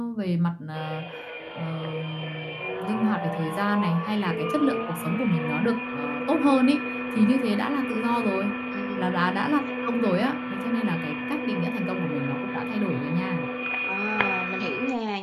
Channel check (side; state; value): both; identical; correlation 1.00